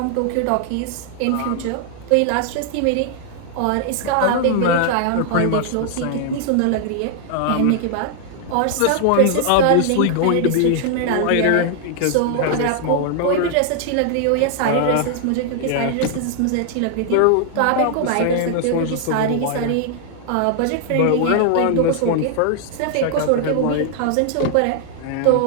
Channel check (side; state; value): both; different; correlation 0.00